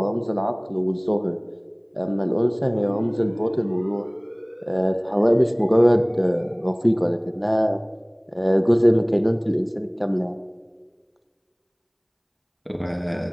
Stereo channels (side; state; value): both; identical; correlation 1.00